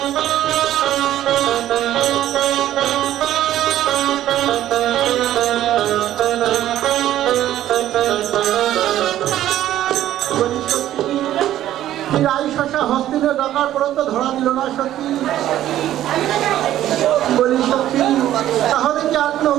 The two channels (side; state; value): left; quieter; 12.7 dB